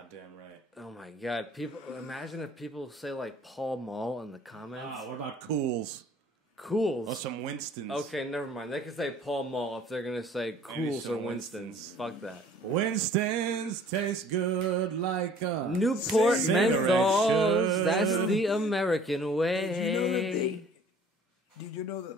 right. Oh my god! Imagine if people say like Paul Mall in the comments. Ah, what about Cools? Cools. Or some Winstons? Okay, never mind. They can say Paul Mall if they're gonna say Cools some or Winston's. Fuck that. Winston's taste good like a Newport cigarette menthols. should. That's the American way. Did you know that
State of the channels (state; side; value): normal; both; correlation 0.52